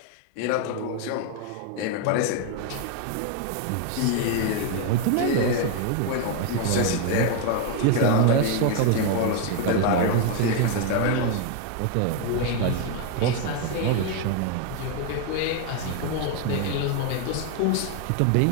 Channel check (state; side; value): different; both; correlation 0.01